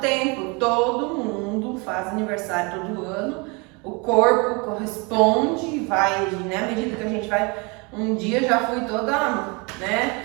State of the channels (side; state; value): left; quieter; 29.6 dB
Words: tempo, todo mundo faz aniversário todo ano, o corpo corresponde e vai, né, à medida que a gente vai, um dia já fui toda, né,